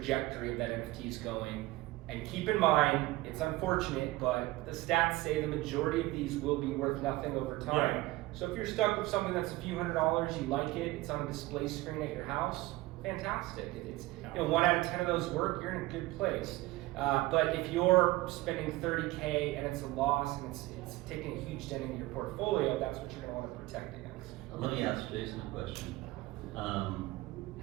of that NFT is going. And keep in mind, it's unfortunate, but the stats say the majority of these will be worth nothing over time. Yeah. So if you're stuck with something that's a few $100s, you like it, it's on a display screen at your house, fantastic. It's 1 out of 10 of those work, you're in a good place. But if you're spending 30K and it's a loss and it's taking a huge dent into your portfolio, that's what you're going to want to protect against. Let me ask Jason a question.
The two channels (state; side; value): quieter; left; 19.0 dB